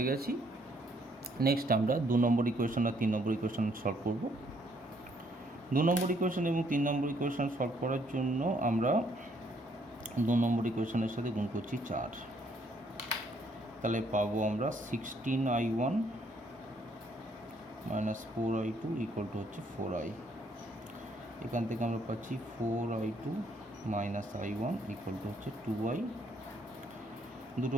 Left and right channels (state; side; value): normal; both; correlation 0.68